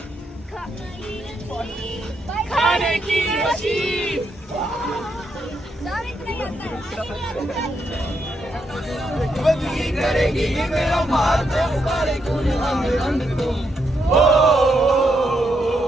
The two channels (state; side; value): normal; both; correlation 0.79